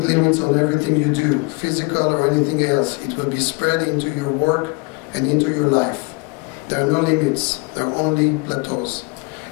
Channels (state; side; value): quieter; right; 28.5 dB